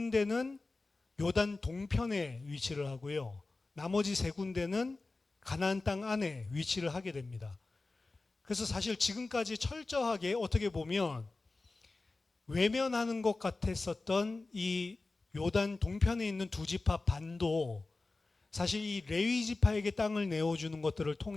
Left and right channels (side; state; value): right; quieter; 3.4 dB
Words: 요단 동편에 위치를 하고요. 나머지 3군데는 가나안 땅 안에 위치를 하게 됩니다. 그래서 사실 지금까지 철저하게 어떻게 보면 외면하는 것 같았었던 이 요단 동편에 있는 두 지파 반도 사실 이 레위 지파에게 땅을 내어주는 것들을